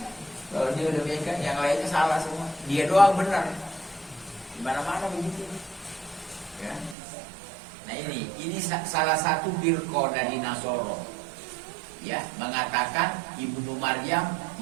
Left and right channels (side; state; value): left; drops out; at 7.0 s